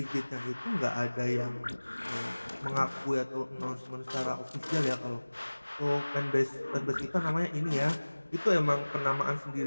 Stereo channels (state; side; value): inverted; both; correlation -1.00